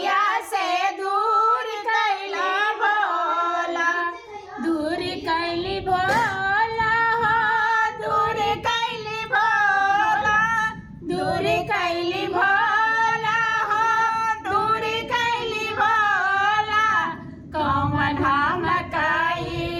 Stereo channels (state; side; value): identical; both; correlation 1.00